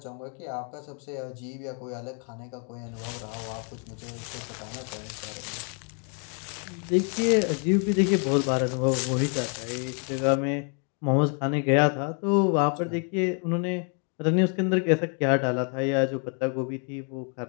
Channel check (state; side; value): quieter; right; 39.9 dB